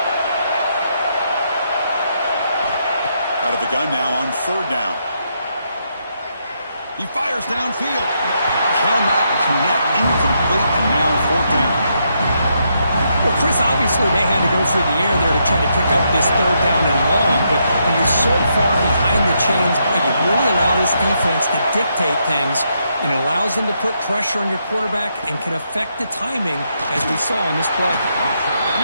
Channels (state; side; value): inverted; both; correlation -0.78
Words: Out of the gun now on 3rd down. He fires downfield. Cannot connect. Incomplete, and now 4th down. Well, Chris, obviously they had to go through the air there to try to pick up this 3rd down and long, but when you're so far behind the chains, you really allow this defense to dictate things, and it allows them to put pressure on your quarterback and can affect the timing, as we saw on this play.